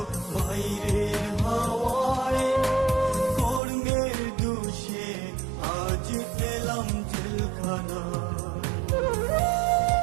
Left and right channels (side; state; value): left; drops out; at 3.6 s